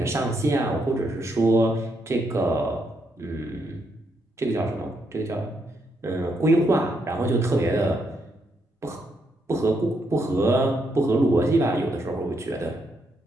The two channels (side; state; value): both; normal; correlation 0.78